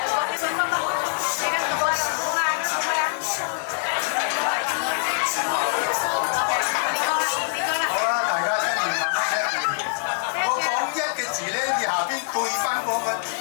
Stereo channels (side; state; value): right; silent; 60 dB below the other